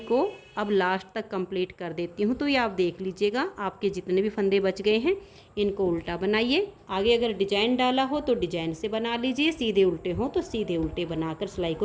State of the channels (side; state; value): both; identical; correlation 1.00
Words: को अब लास्ट तक कंप्लीट कर देती हूँ। तो ये आप देख लीजिएगा, आपके जितने भी फंदे बच गए हैं इनको उल्टा बनाइए। आगे अगर डिजाइन डाला हो तो डिजाइन से बना लीजिए, सीधे उल्टे हो तो सीधे उल्टे बनाकर सिलाई